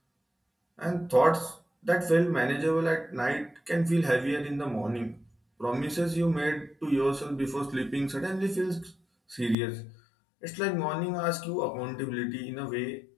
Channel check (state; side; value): drops out; right; at 9.6 s